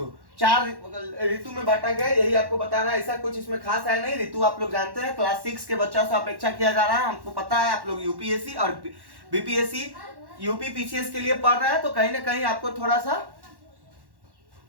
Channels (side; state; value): left; late; 1.1 ms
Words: 4 ऋतु में बांटा गया। यही आपको बता रहा है, ऐसा कुछ इसमें खास है नहीं। ऋतु आप लोग जानते हैं, क्लास 6 के बच्चों से अपेक्षा किया जा रहा है, हमको पता है। आप लोग यूपीएससी और बीपीएससी, यूपी पीसीएस के लिए पढ़ रहे हैं, तो कहीं ना कहीं आपको थोड़ा सा